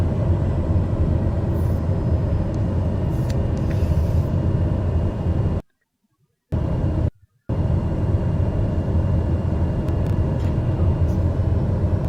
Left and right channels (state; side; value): identical; both; correlation 1.00